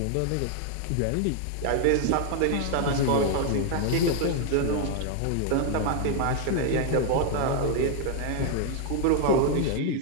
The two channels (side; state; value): both; different; correlation 0.00